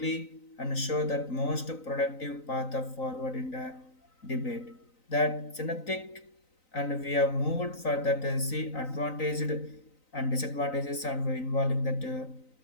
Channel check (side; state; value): right; late; 3.9 ms